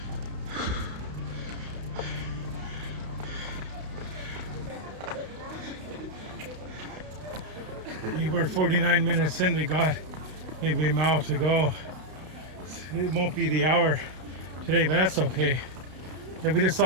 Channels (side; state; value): left; late; 32 ms